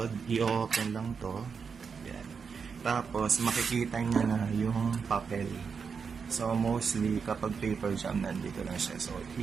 i-open lang to. Yan. Tapos, makikita nyo na yung papel. So, mostly, kapag paper jam, nandito lang siya. So,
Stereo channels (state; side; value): quieter; left; 5.9 dB